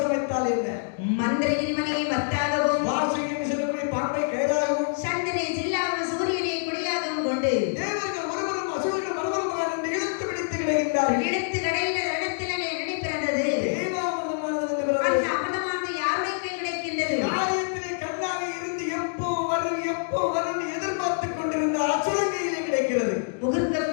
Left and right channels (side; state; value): right; silent; digital silence